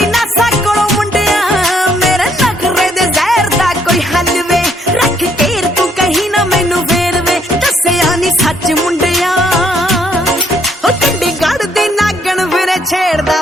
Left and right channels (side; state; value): both; normal; correlation 0.68